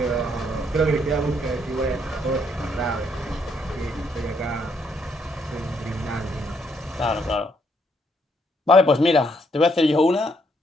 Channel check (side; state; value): both; normal; correlation 0.72